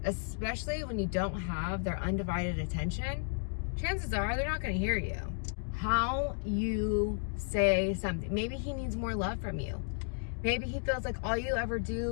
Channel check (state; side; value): silent; right; digital silence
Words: especially when you don't have their undivided attention, chances are they're not going to hear you. How you say something. Maybe he needs more love from you. Maybe he feels like all you ever